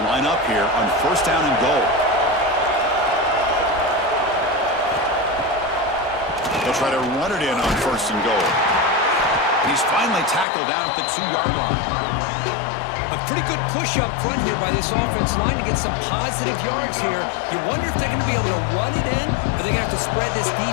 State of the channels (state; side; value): drops out; right; at 10.5 s